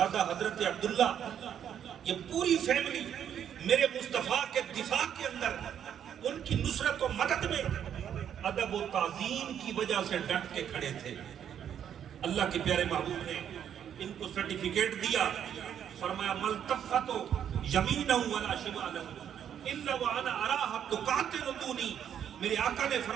حضرت عبداللہ, یہ پوری فیملی میرے مصطفیٰ کے دفاع کے اندر ان کی نصرت و مدد میں ادب و تعظیم کی وجہ سے ڈٹ کے کھڑے تھے. اللہ کے پیارے محبوب نے ان کو سرٹیفکیٹ دیا, فرمایا ملتفتو یمینہ ولا شمالہ الا وانا اراها تقاتل دونی. میرے آقا نے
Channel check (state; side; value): quieter; left; 9.2 dB